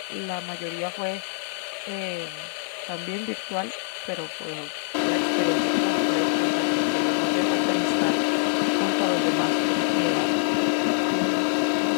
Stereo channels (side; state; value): right; silent; 62 dB below the other